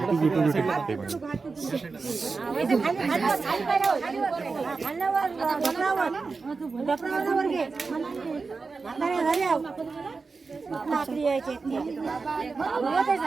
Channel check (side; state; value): left; quieter; 4.4 dB